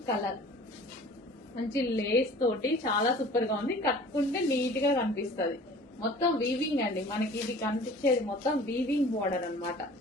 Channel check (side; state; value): both; normal; correlation 0.46